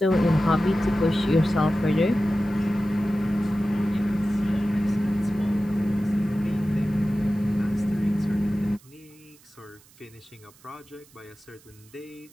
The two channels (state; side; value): noise; right; hiss, 27 dB below the sound